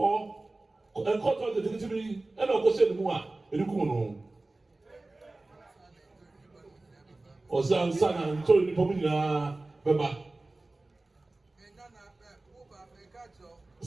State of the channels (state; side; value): quieter; left; 3.0 dB